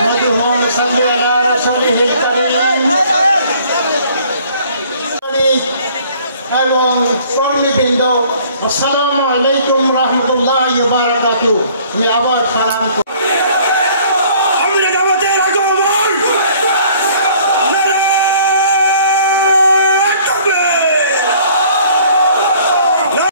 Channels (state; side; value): inverted; both; correlation -0.56